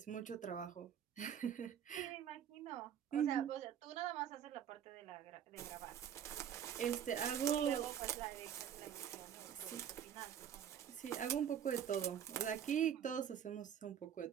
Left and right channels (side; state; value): left; quieter; 9.1 dB